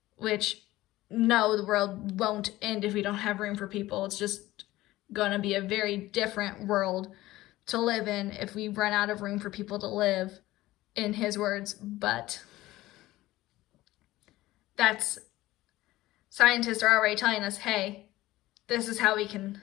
which no, the world won't end if we don't have room for people. It's just going to be a very different world to live in if we run out of room for people to live, in his words. But scientists are already telling us, hey, this is how we can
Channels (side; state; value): right; quieter; 17.0 dB